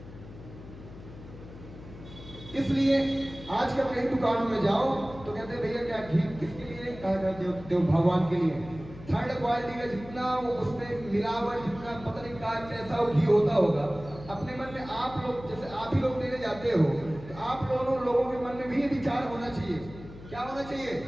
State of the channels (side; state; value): left; noise; hum, 16 dB below the sound